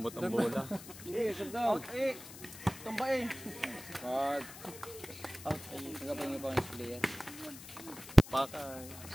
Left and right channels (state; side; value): noise; left; hiss, 14 dB below the sound